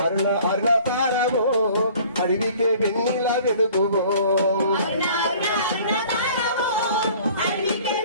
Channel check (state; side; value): inverted; both; correlation -0.50